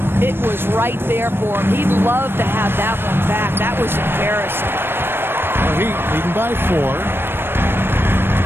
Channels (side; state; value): left; late; 0.10 ms